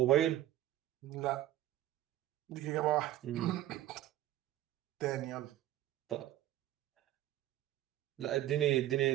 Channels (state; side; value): quieter; left; 13.8 dB